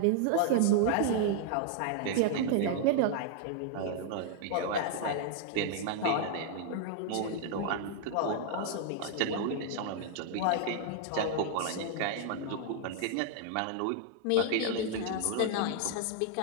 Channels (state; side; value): different; both; correlation 0.00